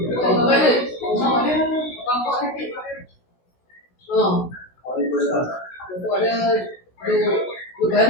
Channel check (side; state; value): right; late; 16 ms